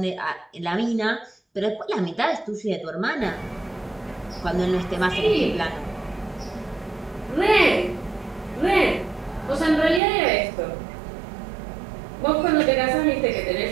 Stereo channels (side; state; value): left; drops out; at 10.0 s